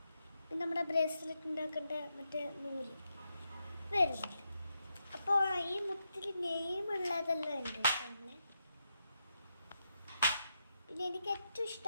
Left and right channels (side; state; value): both; inverted; correlation -0.84